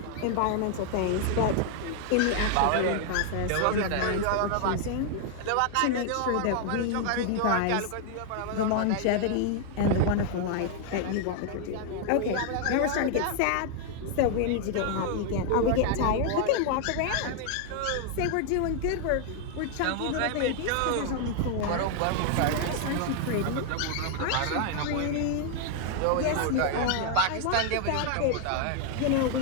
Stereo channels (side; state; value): both; different; correlation 0.00